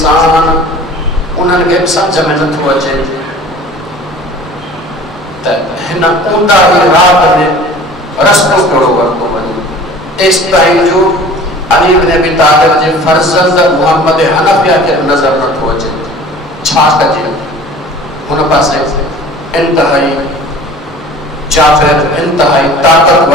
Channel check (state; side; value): normal; both; correlation 0.44